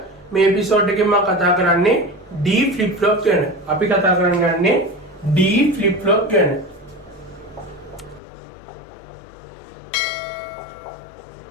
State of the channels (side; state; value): right; drops out; at 8.2 s